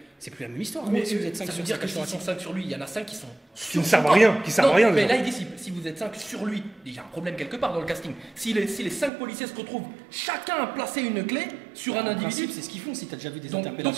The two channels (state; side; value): drops out; left; at 9.1 s